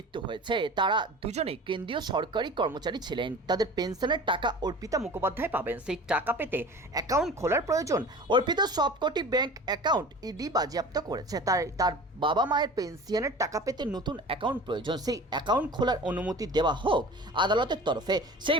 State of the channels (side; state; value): both; normal; correlation 0.39